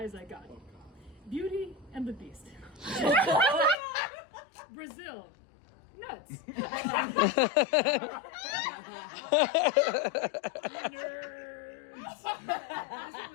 I got. Beauty and the Beast. Brazil. Nuts. Nerds. This one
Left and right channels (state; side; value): drops out; right; at 3.8 s